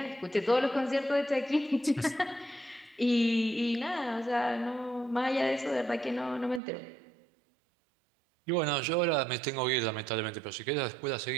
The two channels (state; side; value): drops out; left; at 6.6 s